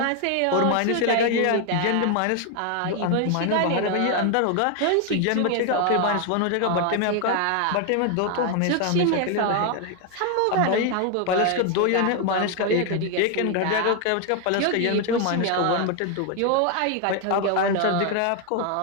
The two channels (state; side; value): different; both; correlation 0.01